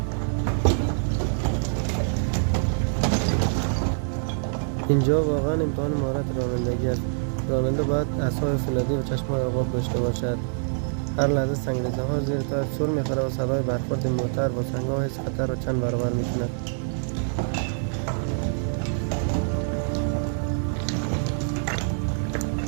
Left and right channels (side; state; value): left; silent; digital silence